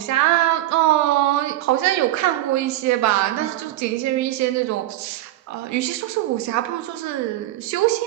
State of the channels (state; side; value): quieter; left; 14.9 dB